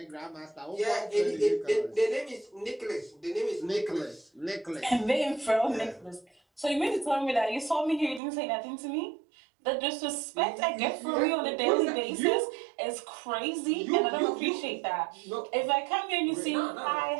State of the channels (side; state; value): left; drops out; at 8.2 s